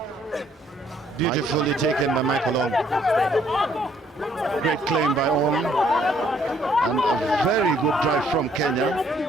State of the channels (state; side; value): normal; both; correlation 0.65